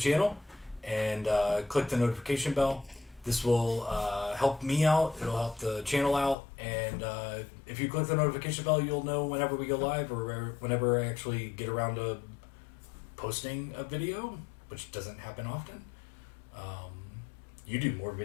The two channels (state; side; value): drops out; right; at 6.4 s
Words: and click the notification bell. This will help me out. It'll help the channel out. And if you click the notification bell, you'll know whenever we go live or whenever I actually get around to posting a video, which doesn't happen often. You do more